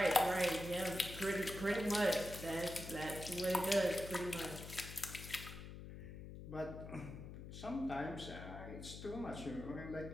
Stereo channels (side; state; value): left; noise; hum, 11 dB below the sound